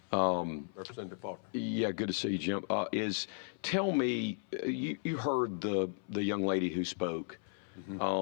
Representative Faulkner. Yeah, good to see you, Jim. Tell me, you heard the young lady who spoke,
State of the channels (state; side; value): silent; right; 54 dB below the other